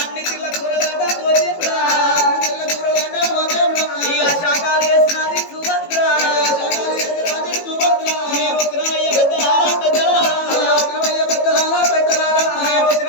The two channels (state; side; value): late; right; 18 ms